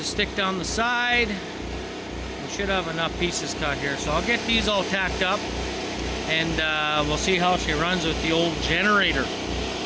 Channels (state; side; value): identical; both; correlation 1.00